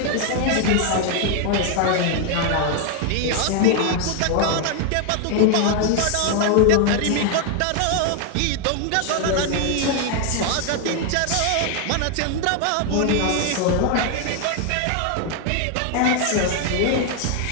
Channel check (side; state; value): both; different; correlation 0.01